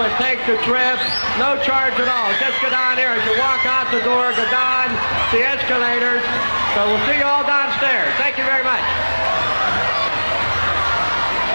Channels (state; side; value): inverted; both; correlation -1.00